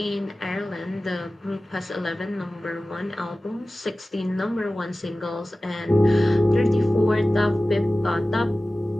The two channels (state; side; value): normal; both; correlation 0.96